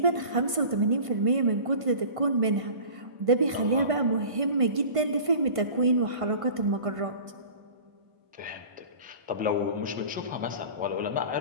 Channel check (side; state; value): left; late; 1.5 ms